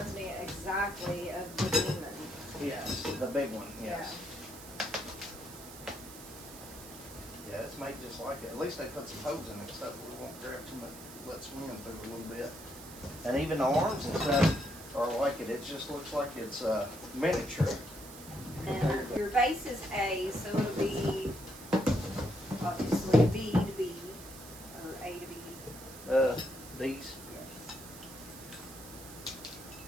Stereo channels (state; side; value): noise; right; hiss, 15 dB below the sound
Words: me exactly of the demon. Yes, the big one, yes. Yeah, it's made just like it. At least they put some hose in it so we won't grab too much, let swim through a little bit. And even the arms and stuff are like it. It just looks like it's miniature. And your base is A, so it'll be obviously B to B, or A to B. These. Yes.